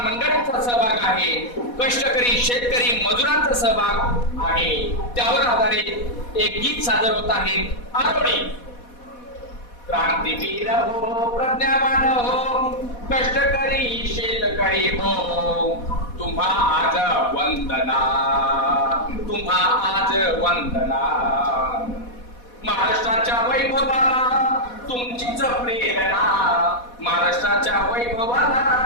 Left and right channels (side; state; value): right; late; 4.1 ms